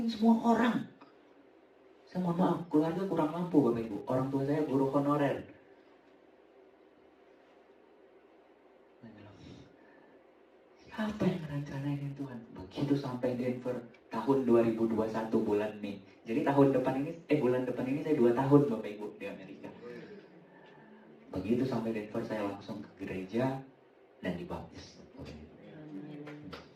semua orang. Saya mohon maaf, keluarga kurang mampu Bapak Ibu. Orang tua saya guru honorer. Saya bilang, siapa yang ngerencanain Tuhan? Begitu sampai Denver, tahun 2021 bulan Mei. Jadi bulan depan ini saya 2 tahun Bapak Ibu di Amerika. Begitu sampai Denver saya langsung ke gereja dan dibaptis.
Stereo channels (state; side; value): identical; both; correlation 1.00